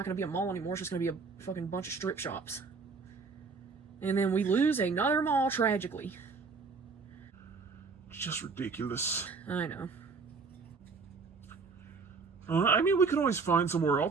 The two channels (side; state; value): left; quieter; 4.7 dB